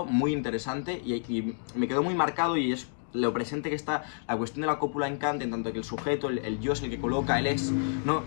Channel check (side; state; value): right; silent; digital silence